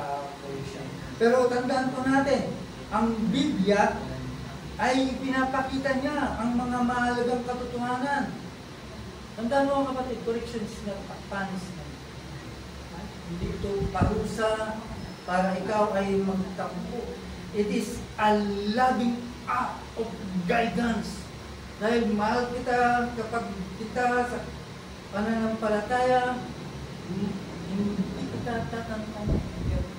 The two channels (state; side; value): identical; both; correlation 1.00